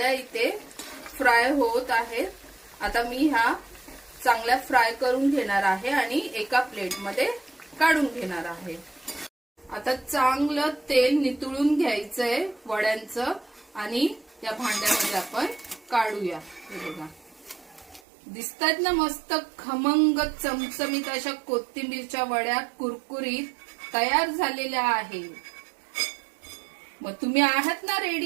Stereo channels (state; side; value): drops out; left; at 18.0 s